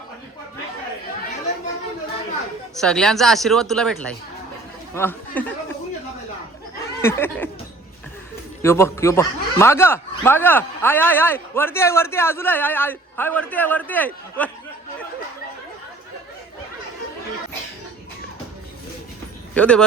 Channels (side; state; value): left; quieter; 3.1 dB